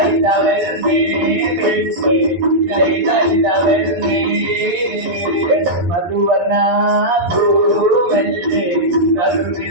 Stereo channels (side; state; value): left; late; 11 ms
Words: പെണ്ണ് ഇതൈതവരുന്നേ മധുവർണ പൂവല്ലേ